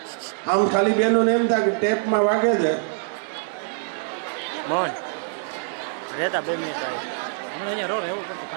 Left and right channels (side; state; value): left; silent; 62 dB below the other